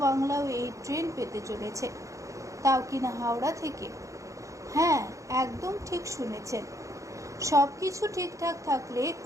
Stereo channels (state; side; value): late; left; 0.15 ms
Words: বাংলাও এই ট্রেন পেতে চলেছে, তাও কিনা হাওড়া থেকে। হ্যাঁ, একদম ঠিক শুনেছেন। সব কিছু ঠিকঠাক থাকলে